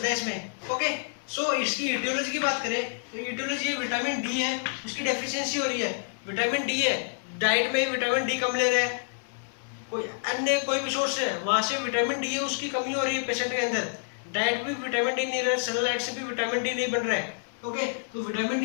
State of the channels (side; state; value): right; silent; 59 dB below the other